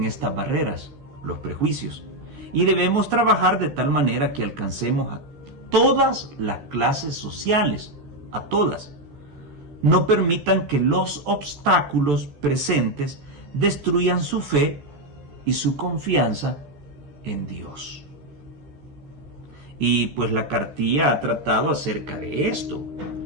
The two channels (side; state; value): left; late; 14 ms